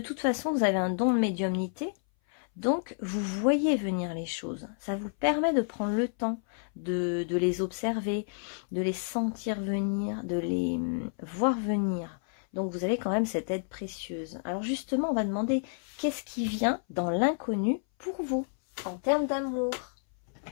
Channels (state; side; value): silent; right; 58 dB below the other